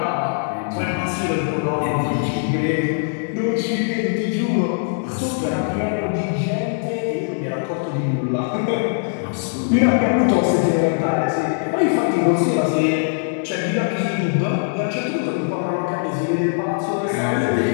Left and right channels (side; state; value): right; silent; 65 dB below the other